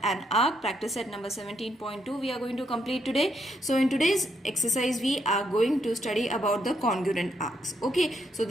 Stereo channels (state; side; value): normal; both; correlation 0.77